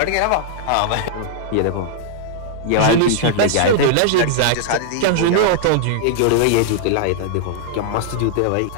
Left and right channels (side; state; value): both; different; correlation -0.01